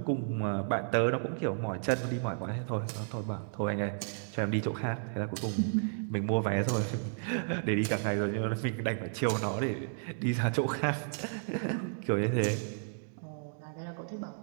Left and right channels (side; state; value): left; silent; digital silence